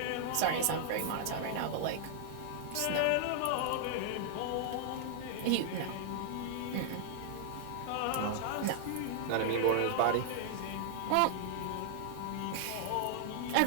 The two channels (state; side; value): different; both; correlation -0.01